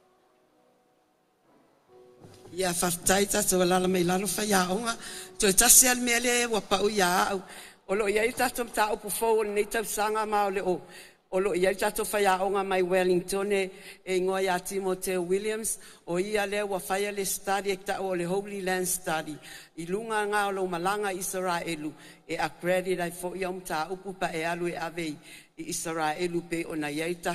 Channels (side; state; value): both; identical; correlation 1.00